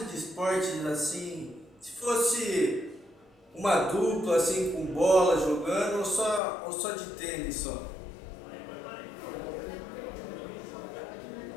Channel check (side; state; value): right; drops out; at 6.4 s